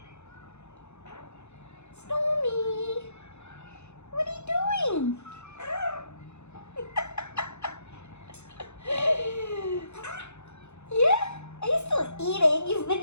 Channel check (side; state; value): right; late; 0.81 ms